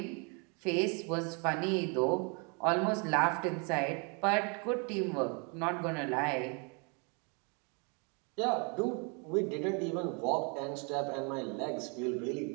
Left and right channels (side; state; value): left; quieter; 34.4 dB